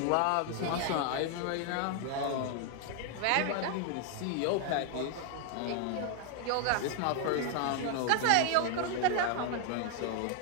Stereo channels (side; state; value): both; different; correlation 0.00